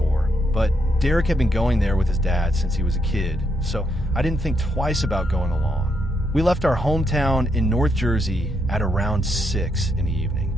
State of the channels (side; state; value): both; normal; correlation 0.79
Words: but Derek had been going there with his dad since he was a kid, so I didn't think twice about going along. We left our hometown in North Jersey at around 6 in the evening.